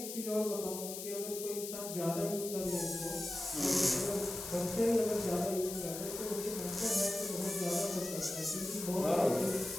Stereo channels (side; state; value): left; noise; hiss, 7 dB below the sound